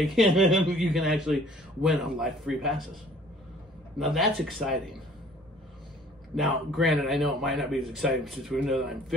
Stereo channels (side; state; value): both; normal; correlation 0.54